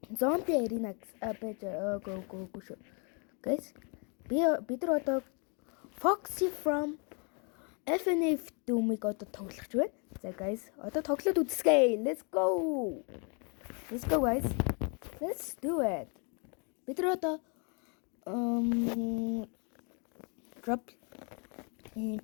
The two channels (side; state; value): right; quieter; 36.3 dB